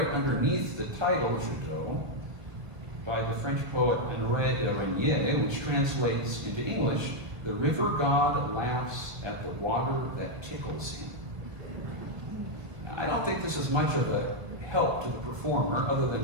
underneath the title, Jadot, by the French poet Henri de Régnier, which translates into English, "The river god laughs at the water that tickles him." Now, I don't think this is much of a help to the performer, other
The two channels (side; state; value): left; late; 1.7 ms